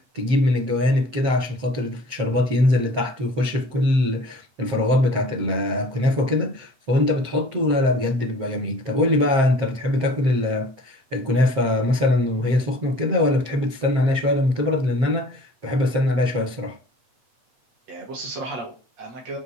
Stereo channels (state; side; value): late; left; 7.6 ms